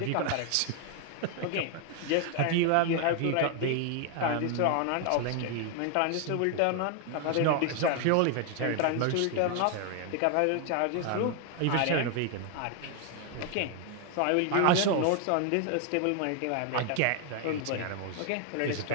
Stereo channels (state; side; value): different; both; correlation 0.00